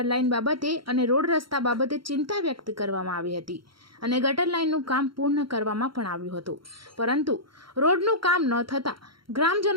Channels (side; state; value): left; late; 0.73 ms